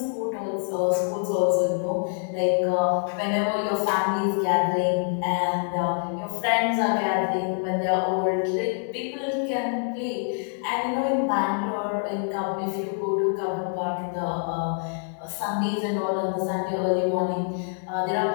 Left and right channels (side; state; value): right; silent; 55 dB below the other